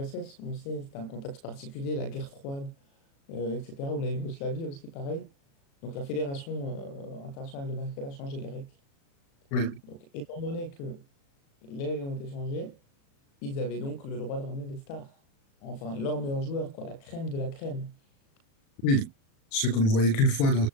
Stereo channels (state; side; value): late; right; 36 ms